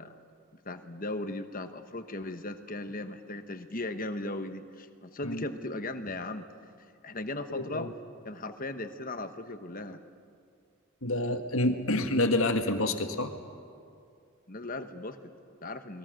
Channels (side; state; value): both; normal; correlation 0.14